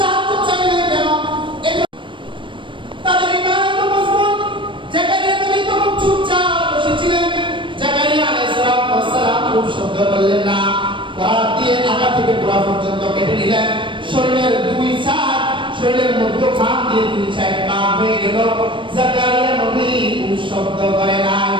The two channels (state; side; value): late; left; 0.24 ms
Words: চাইলেন কেন? তাদের ঈমান এত মজবুত। জাকারিয়া নবী তখন চুপচাপ বসেছিলেন। জাকারিয়া আলাইহিস সালাম খুব শব্দ করলেন না, করাত দিয়ে আগা থেকে গোড়া পর্যন্ত কেটে নিলেন। শরীরের দুই সাইড, শরীরের মধ্যখান দিয়ে দুই সাইড পার হয়ে গেল। জাকারিয়া নবী খুব শব্দ করে না,